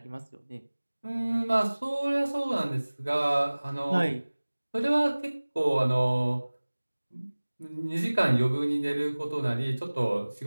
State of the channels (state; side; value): inverted; both; correlation -1.00